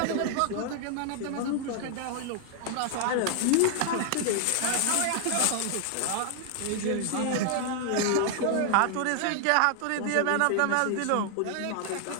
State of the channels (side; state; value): both; different; correlation 0.00